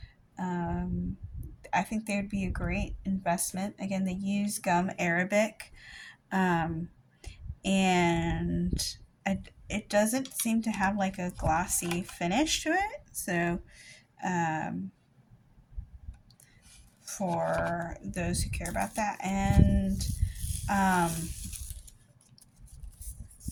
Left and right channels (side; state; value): both; identical; correlation 1.00